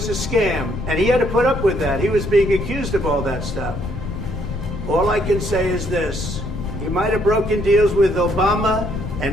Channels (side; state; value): left; noise; rumble, 6 dB below the sound